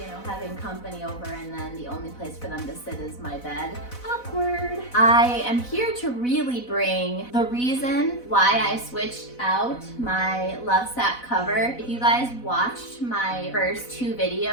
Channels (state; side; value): late; right; 4.0 ms